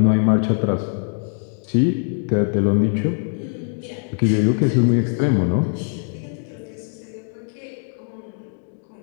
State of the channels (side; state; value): right; silent; 57 dB below the other